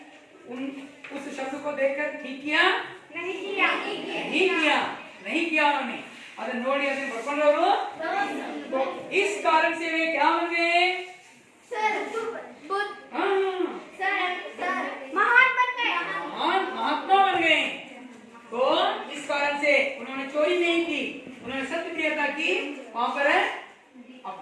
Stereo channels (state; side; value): identical; both; correlation 1.00